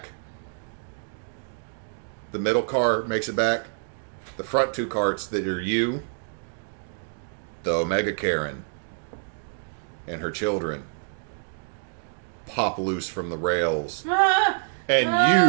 The middle car makes it back. The front two carts that are you, the Omega Karen, and her children pop loose from the rails. And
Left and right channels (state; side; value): silent; left; digital silence